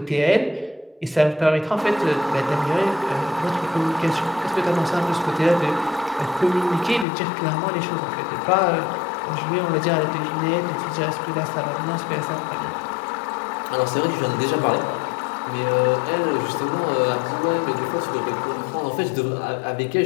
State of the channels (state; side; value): drops out; right; at 7.1 s